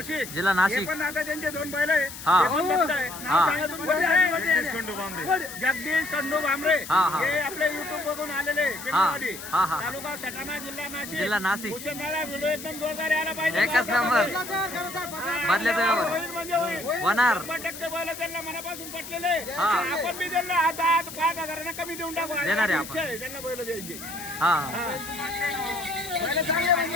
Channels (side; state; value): left; noise; hiss, 12 dB below the sound